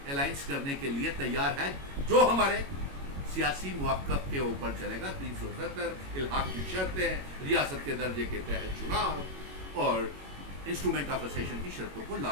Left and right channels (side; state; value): left; late; 21 ms